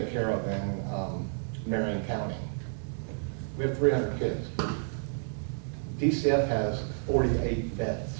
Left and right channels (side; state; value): left; silent; digital silence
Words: care of in Marion County. We have 300 kids. DCF has 48 beds.